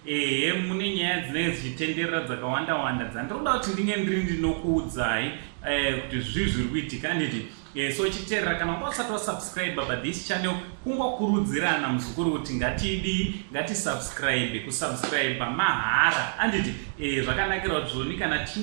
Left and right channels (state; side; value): silent; left; digital silence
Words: mune nyaya dzinenge dzichitenderera dzakawanda wanda dzandinoda kuti ndinge ndiri ndinokuudzai kuti zviri kuitika anditi. So chiterera kana usati wasubscribe pathis channel kungokurudzirana muzukuru kuti ngatisubscribe. Kusubscribe mahara anditi zvakanakira kuti zvoni kana